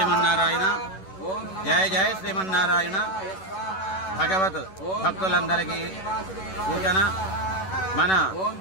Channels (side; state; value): right; late; 11 ms